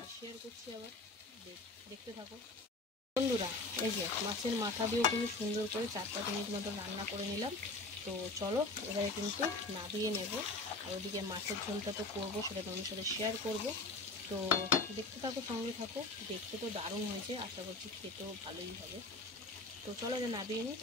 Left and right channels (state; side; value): quieter; right; 3.3 dB